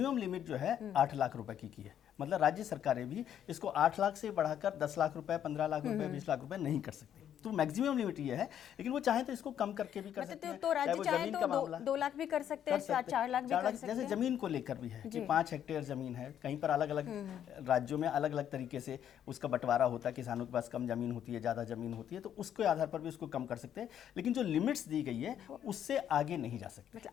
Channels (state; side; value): quieter; right; 9.9 dB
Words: लिमिट जो है 8 लाख रुपए की है। मतलब राज्य सरकारें भी इसको 8 लाख से बढ़ाकर 10 लाख रुपए, 15 लाख रुपए, 20 लाख रुपए नहीं कर सकती। तो मैक्सिमम लिमिट ये है, लेकिन वो चाहे तो इसको कम करके भी कर सकते हैं। तो राज्य चाहे वो चाहे जमीन तो का मामला 2 लाख भी कर सकते हैं, 4 लाख भी कर सकते हैं। जैसे जमीन को लेकर भी है कि 5 हेक्टेयर जमीन है, कहीं पर अलग अलग राज्यों में अलग अलग तरीके से उसका बंटवारा होता है, किसानों के पास कम जमीन होती है, ज़्यादा जमीन होती है, तो उसके आधार पर भी उसको कम कर सकते हैं। लेकिन जो लिमिट्स दी गई है उससे आगे नहीं जा सकते, मतलब